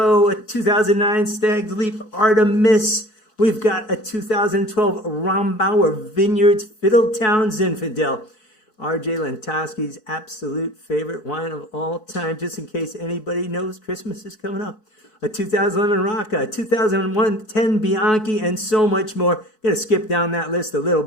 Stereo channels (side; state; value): right; late; 4.6 ms